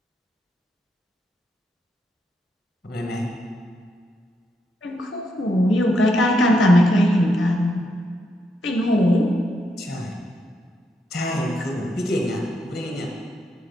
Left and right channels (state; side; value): normal; both; correlation 0.80